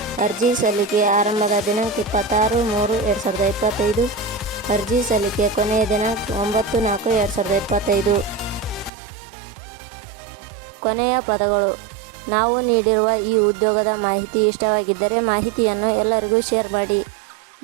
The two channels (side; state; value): left; drops out; at 8.9 s